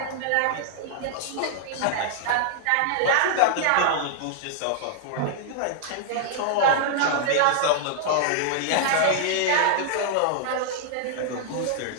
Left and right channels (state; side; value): different; both; correlation -0.01